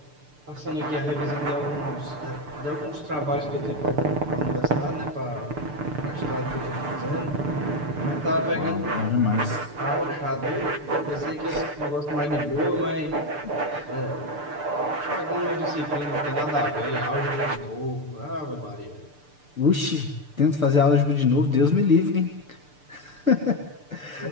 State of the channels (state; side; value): late; left; 6.8 ms